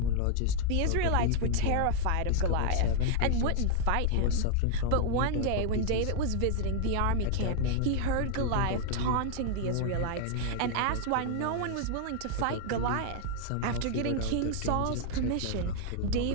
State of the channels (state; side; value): different; both; correlation 0.00